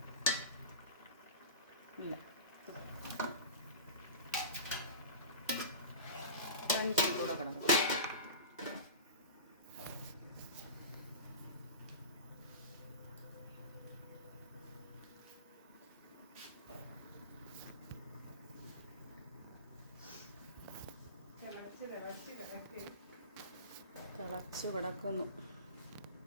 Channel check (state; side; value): inverted; both; correlation -0.31